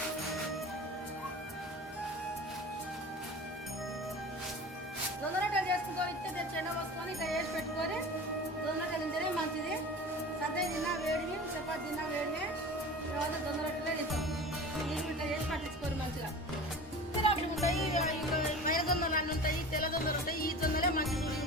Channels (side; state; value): both; normal; correlation 0.36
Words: జొన్న రొట్టెలు చేసుకుంటాం. ఇస్తే చెండ పోసుకొని ఇట్లా వేసి పెట్టుకొని జొన్న రొట్టెలు తింటేనే మంచిది. సద్ద తిన్నా వేడివి, చపాతి తిన్నా వేడివే, తర్వాత జొన్న రొట్టెలే తింటాం. నీళ్ళు ఇట్లా చేసి పట్టించుకోరు మంచిగా. రొట్టెలు ఉంటాయి, మైల జొన్నలు అన్నీ ఉంటాయి, తెల్ల జొన్నలు ఉంటాయి. ఈ జొన్నలే మంచిది.